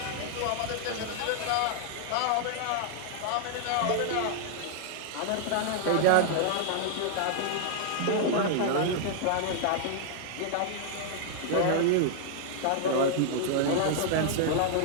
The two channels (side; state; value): both; different; correlation -0.01